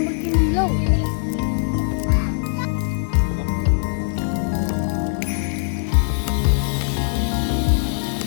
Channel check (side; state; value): right; silent; digital silence